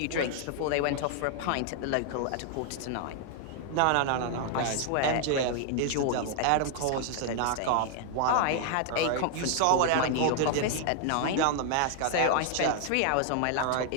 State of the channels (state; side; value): different; both; correlation 0.00